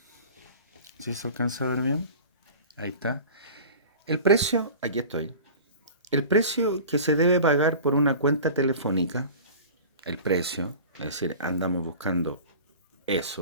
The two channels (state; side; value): inverted; both; correlation -0.38